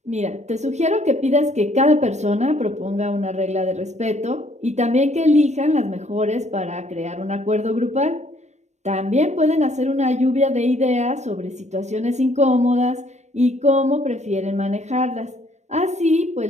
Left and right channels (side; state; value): left; late; 0.33 ms